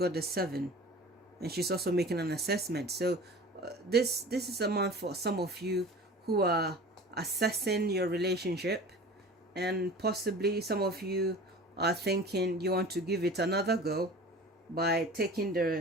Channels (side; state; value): both; normal; correlation 0.39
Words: the 7, and she's also making an assessment. So this is a month for some of you who are assessing your relationship, and possibly some of you are thinking you want to give it another go by taking